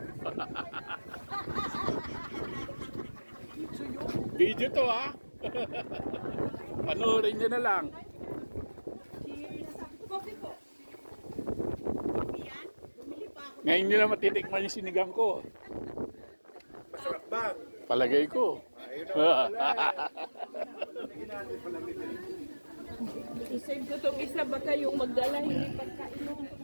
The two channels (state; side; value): inverted; both; correlation -1.00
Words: Video to, ha? Panoorin nyo na lang. Ngayon nyo na matitikman yung sinigang ko. Masarap ba? Palagay ko. Isave ko itong isa ba kayong magdala hindi pagkainom ko